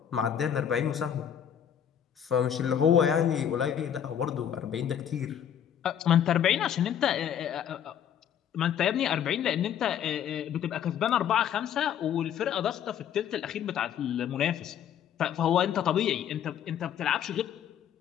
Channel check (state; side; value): quieter; right; 9.3 dB